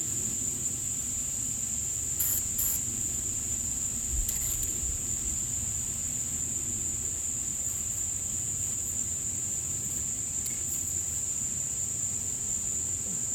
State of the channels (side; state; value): both; identical; correlation 1.00